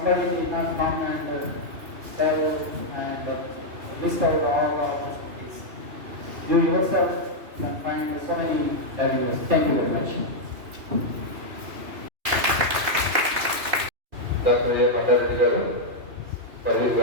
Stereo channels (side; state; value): left; late; 2.8 ms